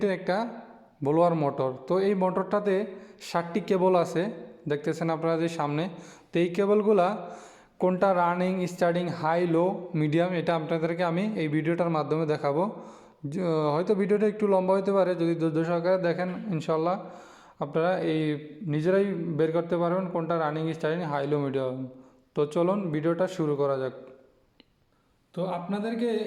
একটা ব্লোয়ার মোটর। তো এই মোটরটাতে 7টি কেবল আছে, দেখতেছেন আপনারা যে সামনে। তো এই কেবলগুলা কোনটা রানিং, স্টার্টিং, হাই, লো, মিডিয়াম, এটা আপনাদেরকে আমি এই ভিডিওটার মাধ্যমে দেখাবো। হয়তো ভিডিওটা একটু লম্বা হতে পারে, যদি ধৈর্য সহকারে দেখেন ইনশাল্লাহ আপনারা এই নিজেরাই বের করতে পারবেন কোনটা রানিং, স্টার্টিং, হাই, লো, মিডিয়াম। তো চলুন ভিডিওটা শুরু করা যাক। তো আপনাদেরকে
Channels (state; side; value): identical; both; correlation 1.00